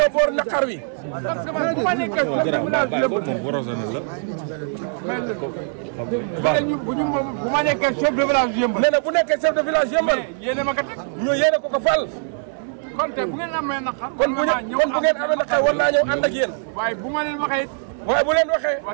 boor naqar wi bu ma nekkee chef de village yëmbal bu ma nekkee chef de village yëmbal nee na bu nekkee chef de village yëmbal yéen a ma ko teg ñu yéene ko ko fal kon tey bu ngeen amee naqar kon bu ngeen amee naqar war naa ñëw ànd ak yéen waaye bu ma leen waxee waaye bu leen waxee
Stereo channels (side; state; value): left; silent; 62 dB below the other